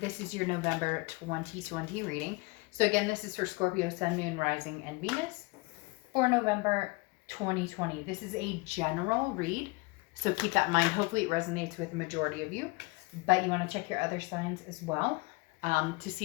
is your November 2020 reading. So again, this is for Scorpio, Sun, Moon, Rising, and Venus for November 2020. This is a general read, so keep that in mind. Hopefully it resonates with the majority of you, but you want to check your other signs as well to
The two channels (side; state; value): right; quieter; 26.1 dB